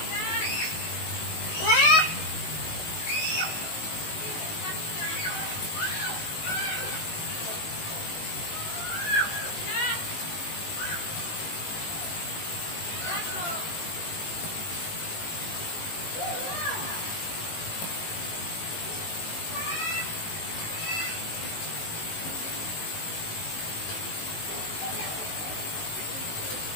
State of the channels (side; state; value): right; late; 19 ms